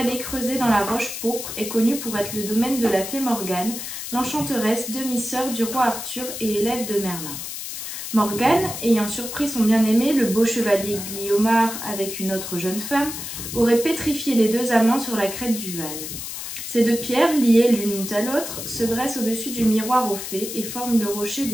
creusée dans la roche pourpre et connue pour être le domaine de la fée Morgane, l'enchanteresse, demi-sœur du roi Arthur et élève de Merlin. Morgane, ayant surpris son bien-aimé, le beau chevalier Guillaumard, avec une autre jeune femme, aurait pétrifié les deux amants sur la crête du Val. Ces deux pierres, liées l'une à l'autre, se dressent au-dessus du miroir aux fées et forment le rocher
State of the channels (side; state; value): left; noise; hiss, 7 dB below the sound